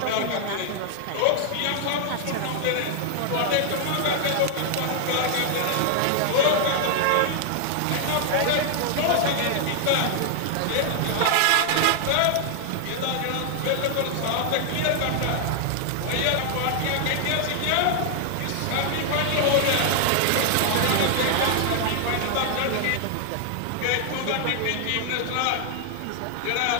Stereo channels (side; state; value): both; different; correlation 0.00